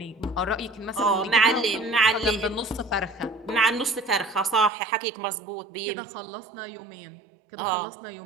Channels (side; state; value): left; drops out; at 4.7 s